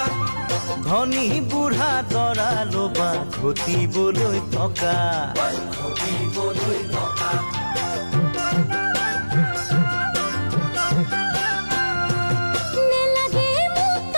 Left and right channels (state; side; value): inverted; both; correlation -1.00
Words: ধনী বুঢ়া দৰা লবা ঘটিবলৈ টকা